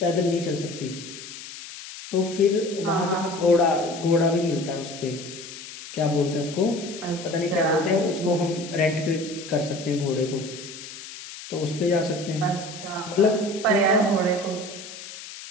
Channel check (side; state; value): left; noise; hiss, 13 dB below the sound